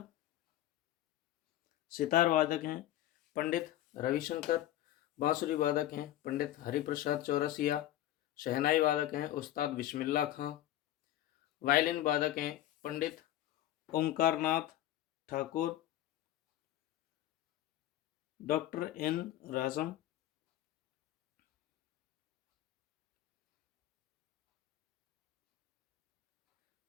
सितार वादक हैं पंडित रविशंकर, बांसुरी वादक हैं पंडित हरिप्रसाद चौरसिया, शहनाई वादक हैं उस्ताद बिस्मिल्लाह खां, वायलिन वादक हैं पंडित ओमकारनाथ ठाकुर, डॉक्टर एन राजम,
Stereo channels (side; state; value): right; quieter; 13.4 dB